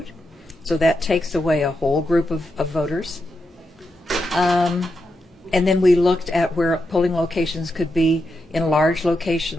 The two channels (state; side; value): normal; both; correlation 0.86